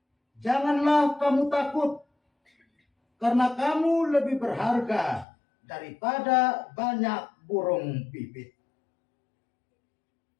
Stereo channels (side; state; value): right; drops out; at 5.2 s